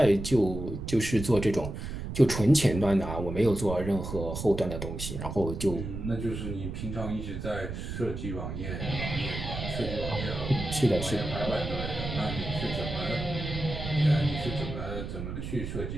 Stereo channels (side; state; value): right; noise; rumble, 6 dB below the sound